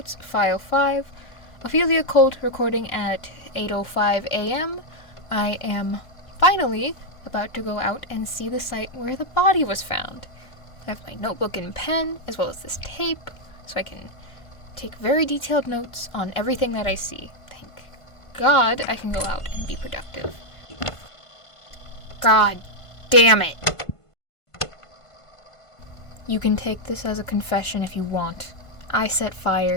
file 5. Ophelia Colt recording at 8:05 a.m. I am finally about to go out and see the site where the body was found. I have my notebook and pen, as well as this tape, so I can take very detailed notes on everything that I see. Thank God I can go out and be productive. God damn it! You can take this as a confession if you want. I set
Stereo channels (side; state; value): right; late; 1.5 ms